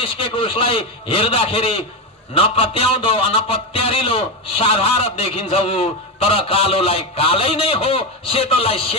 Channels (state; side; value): normal; both; correlation 0.12